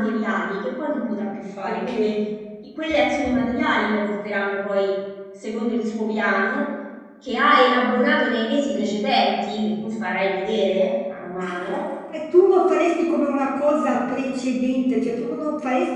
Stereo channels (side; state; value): both; identical; correlation 1.00